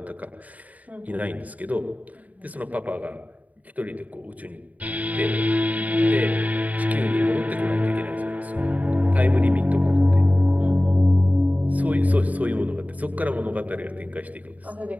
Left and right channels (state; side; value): late; left; 0.073 ms